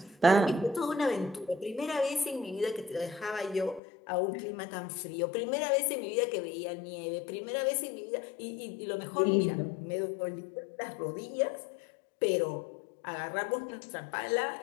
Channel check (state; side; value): drops out; right; at 3.8 s